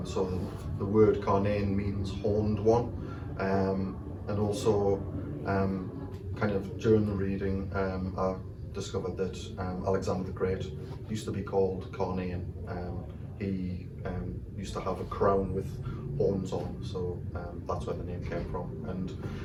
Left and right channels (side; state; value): both; identical; correlation 1.00